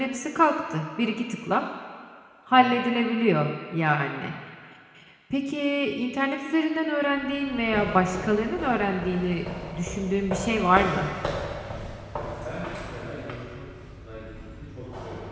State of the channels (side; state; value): both; identical; correlation 1.00